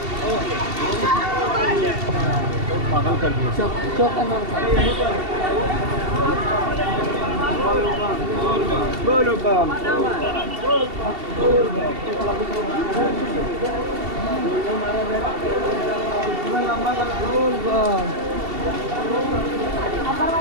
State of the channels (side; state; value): left; late; 2.7 ms